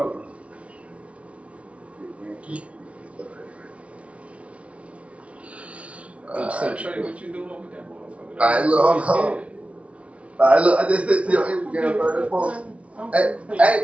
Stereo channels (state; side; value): late; left; 0.063 ms